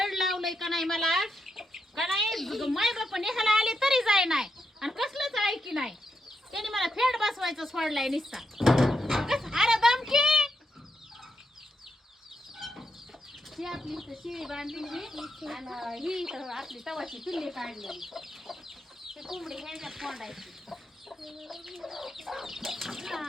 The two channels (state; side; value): normal; both; correlation 0.83